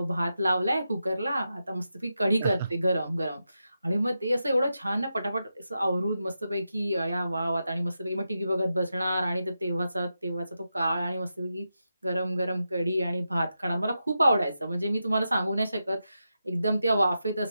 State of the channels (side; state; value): both; inverted; correlation -0.88